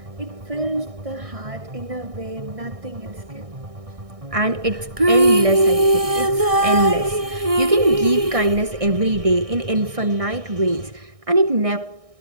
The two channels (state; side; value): late; left; 1.6 ms